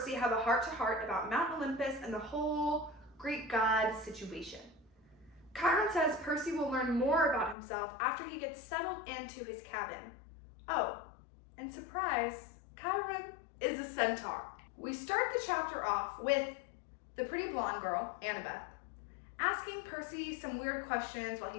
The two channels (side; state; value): right; drops out; at 7.6 s